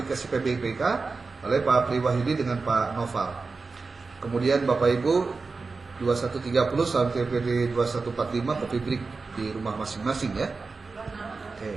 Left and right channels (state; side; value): quieter; left; 4.2 dB